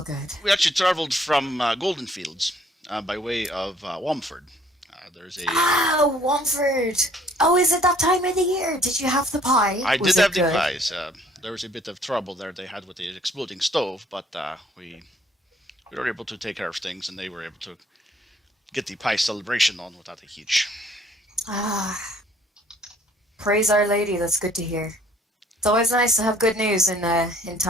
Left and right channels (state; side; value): normal; both; correlation 0.59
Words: good. We actually traveled from Golden Fields by way of Womford. There's a. Womford. Oh, is it that time of the year? Did you have the pie? I Was did it have the good? pies. There was a bit of trouble there they had with the exploding stove, but we were able to take care of things, and they were able to get the pie celebration on without a hitch. Praise Our Lady. That's good to hear. It's always nice to have good news in